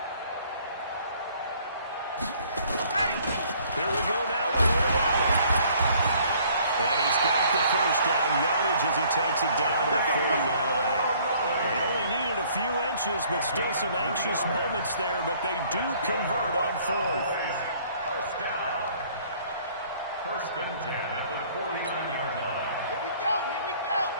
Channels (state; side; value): inverted; both; correlation -0.59